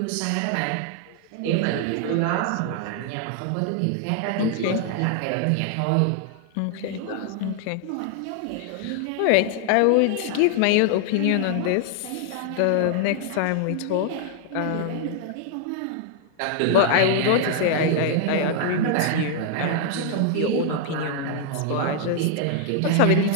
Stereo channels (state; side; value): different; both; correlation 0.00